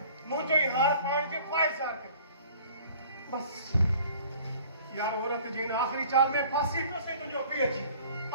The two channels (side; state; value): both; inverted; correlation -0.49